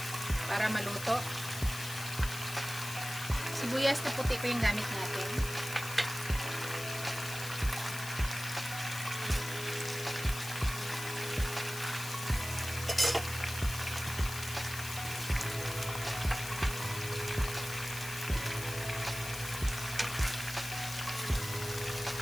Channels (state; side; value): noise; left; hiss, 9 dB below the sound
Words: para maluto. Sibuyas na puti ko yung gamit natin.